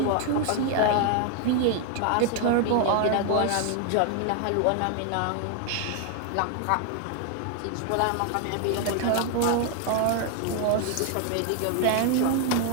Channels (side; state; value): both; different; correlation 0.00